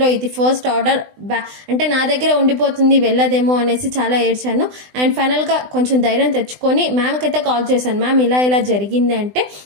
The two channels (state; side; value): late; left; 20 ms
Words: ఇది ఫస్ట్ ఆర్డర్ అంటే నా దగ్గర ఉండిపోతుంది వెళ్ళదేమో అనేసి చాలా ఏడ్చాను. అండ్ ఫైనల్గా కొంచెం ధైర్యం తెచ్చుకొని మ్యామ్కి అయితే కాల్ చేశాను. మ్యామ్ ఇలా జరిగింది అంటే